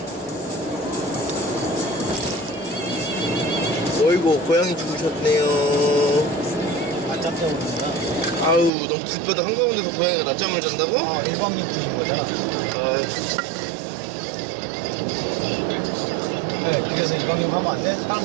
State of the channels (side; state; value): left; drops out; at 8.7 s